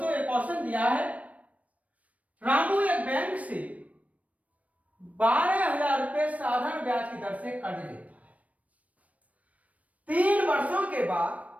एक क्वेश्चन दिया है, रामू एक बैंक से 12,000 रुपए साधारण ब्याज की दर से कर्ज लेता है। 3 वर्षों के बाद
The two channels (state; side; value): late; left; 0.068 ms